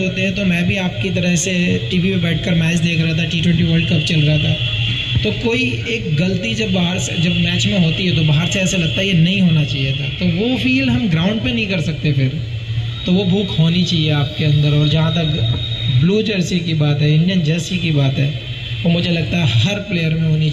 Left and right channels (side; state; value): both; identical; correlation 1.00